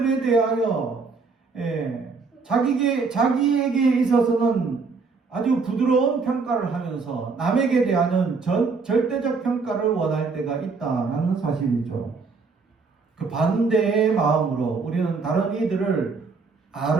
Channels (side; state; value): left; quieter; 4.6 dB